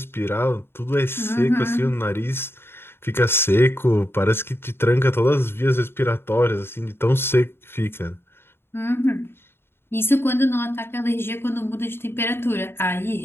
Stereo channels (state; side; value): late; right; 0.11 ms